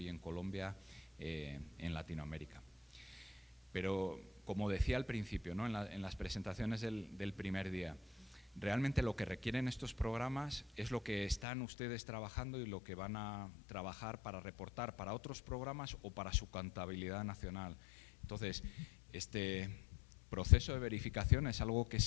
en Colombia, en Latinoamérica. Pero, como decía al principio, ¿no?, en las presentaciones del primer día, realmente lo que requieren estos programas es lo que están ustedes trabajando y lo que van a trabajar para reportar para otros programas o para su contabilidad nacional. Entonces, este proceso de verificación es algo que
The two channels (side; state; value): right; drops out; at 11.5 s